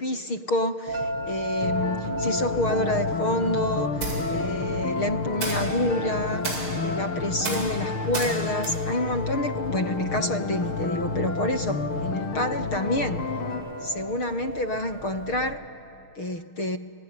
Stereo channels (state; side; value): late; right; 6.5 ms